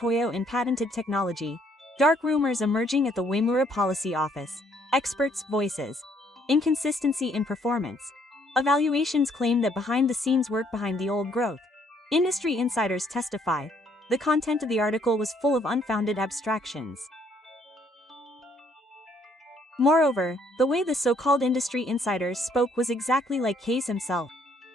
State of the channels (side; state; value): both; normal; correlation 0.67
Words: in patented technology, dark rumors emerging at the Uemura Policy Office, experts' voices, inconsistency in performance. Evaluations claim that behind-the-scenes work behind the old growth. Industry insiders testify. The content of the article was full of unfounded abstractions. Moreover, the way the so-called industry insiders spoke was exactly like Case himself.